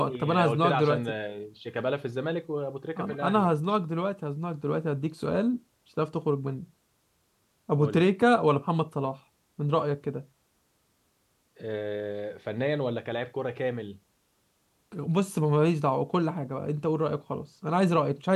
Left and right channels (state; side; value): identical; both; correlation 1.00